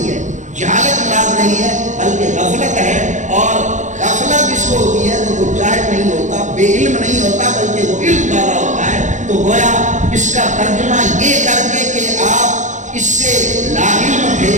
ہے، جہالت مراد نہیں ہے، بلکہ غفلت ہے، اور غفلت جس کو ہوتی ہے تو وہ جاہل نہیں ہوتا، بے علم نہیں ہوتا، بلکہ وہ علم والا ہوتا ہے۔ تو گویا اس کا ترجمہ یہ کر کے کہ آپ اس سے لاعلم تھے،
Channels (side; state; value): left; late; 0.35 ms